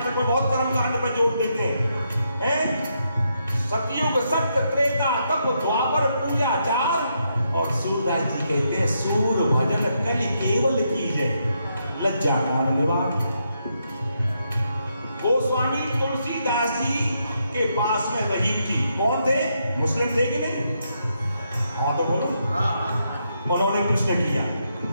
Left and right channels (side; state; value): both; inverted; correlation -0.80